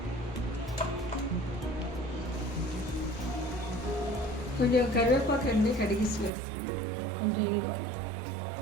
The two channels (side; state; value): left; drops out; at 6.3 s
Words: కొంచెం కరివేపాకు అండి కడిగిసి వేస్తుంది, కొంచెం ఇంగు.